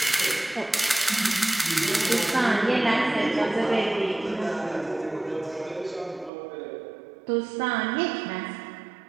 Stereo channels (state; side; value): drops out; left; at 6.3 s